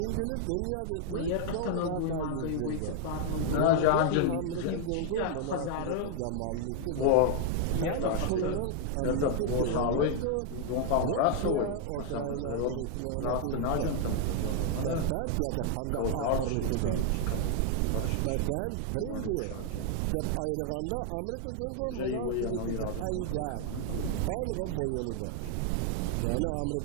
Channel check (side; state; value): both; different; correlation 0.00